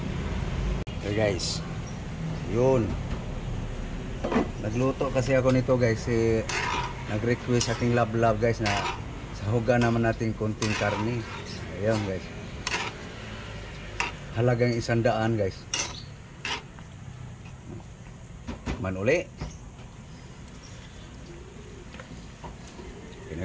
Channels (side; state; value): both; identical; correlation 1.00